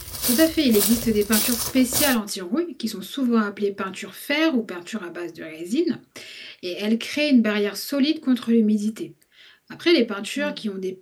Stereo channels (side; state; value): both; identical; correlation 1.00